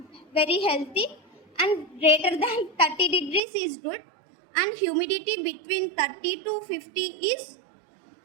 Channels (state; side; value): drops out; left; at 3.4 s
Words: very healthy, and greater than 30 degrees is good. And humidity between 30 to 50 is